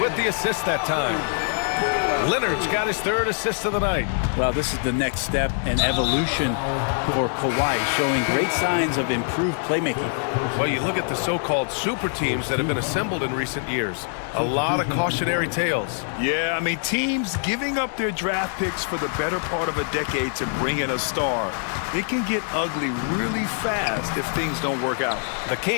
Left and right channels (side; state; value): right; silent; 58 dB below the other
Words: with the assist that time. Leonard's got his 3rd assist of the night. Well, this is the next step in evolution for Kawhi, showing great signs of improved playmaking. Well, you look at the so-called super teams that have been assembled in recent years. A lot of cautionary tales. Yeah, I mean, teams giving up their draft picks for the better part of a decade to bring in a star. It can get ugly really fast if things don't work out. The